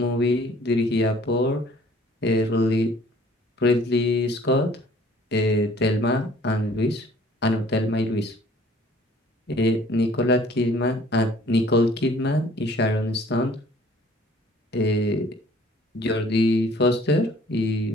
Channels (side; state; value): both; normal; correlation 0.55